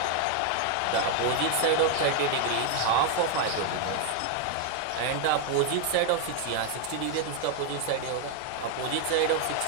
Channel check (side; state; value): both; different; correlation 0.01